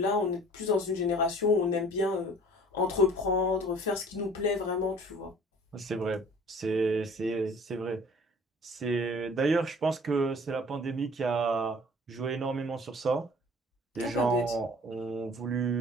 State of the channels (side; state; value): both; normal; correlation 0.49